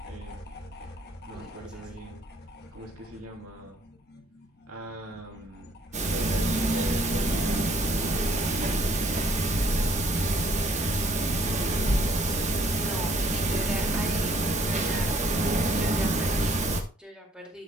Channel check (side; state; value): both; normal; correlation 0.62